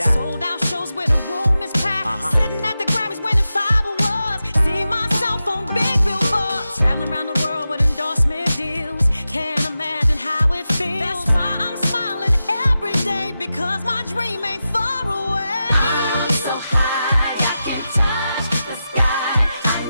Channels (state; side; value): inverted; both; correlation -0.91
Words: Sold out shows where the room is packed. Sitting at the Grammys winning 5 awards. See myself on big billboards. Traveling around the world with endorsement deals. Can't imagine how it feels. That's why I'm smiling every day, because my dream ain't far away. I'm so high, I can touch the sky. I